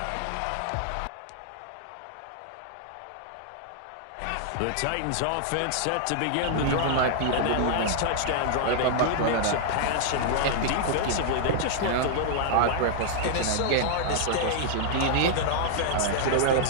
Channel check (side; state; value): both; different; correlation -0.01